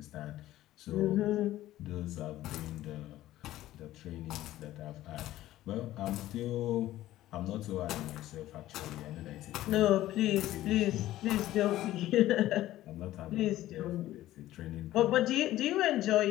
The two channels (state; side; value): quieter; right; 14.7 dB